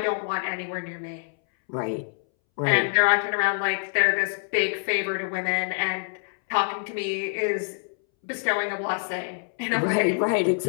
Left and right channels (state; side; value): silent; right; 61 dB below the other